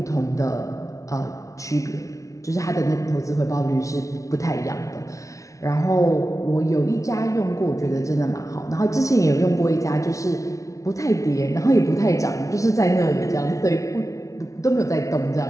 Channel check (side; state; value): right; late; 0.16 ms